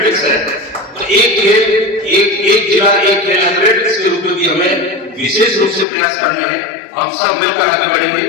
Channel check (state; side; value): drops out; right; at 5.9 s